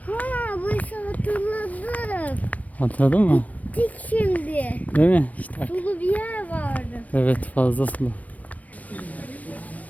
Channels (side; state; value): right; late; 0.070 ms